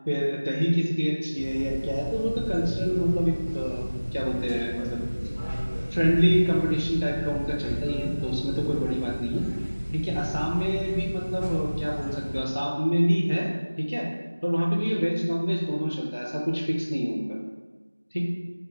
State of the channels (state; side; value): inverted; both; correlation -1.00